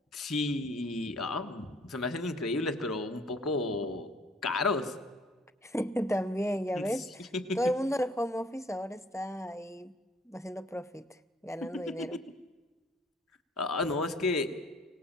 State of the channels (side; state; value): both; normal; correlation 0.58